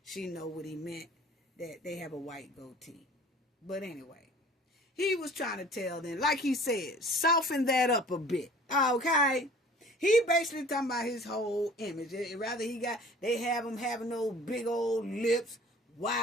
She know what he meant, that they have a white goatee. But anyway, he was trying to tell them, like he said, soften that up a bit. Okay? He basically talking about his whole image. Rather they have him having those big old lips,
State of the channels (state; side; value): normal; both; correlation 0.48